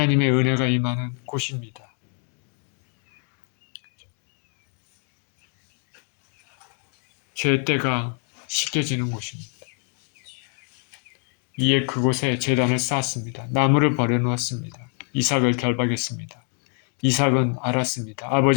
은혜가 임하는 곳입니다. 죄때가 씻겨지는 곳입니다. 이에 그곳에 제단을 쌓았습니다. 나무를 버려놓았습니다. 이삭을 결박했습니다. 이삭은 알았습니다.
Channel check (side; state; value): right; quieter; 38.8 dB